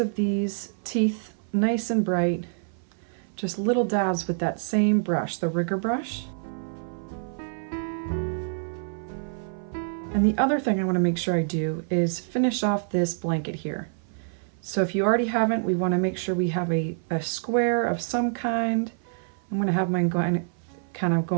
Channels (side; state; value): left; silent; 57 dB below the other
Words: these teeth nice and bright. Just little dabs with that same brush, the rigger brush. And the other thing I want to make sure I do is finish off this blanket here. So if you already haven't, we want to make sure we have a square of some kind. I'm going to have mine kind of